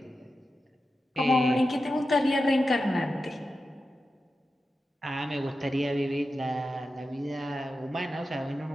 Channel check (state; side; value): normal; both; correlation 0.91